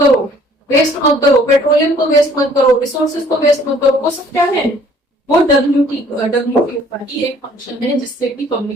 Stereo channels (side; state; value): both; normal; correlation 0.58